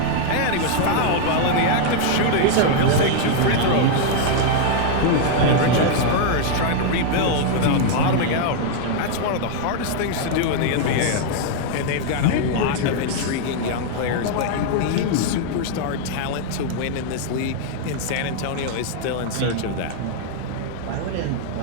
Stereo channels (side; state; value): both; different; correlation 0.00